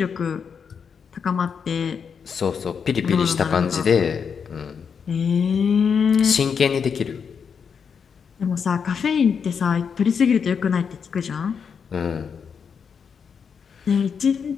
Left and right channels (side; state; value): right; quieter; 6.5 dB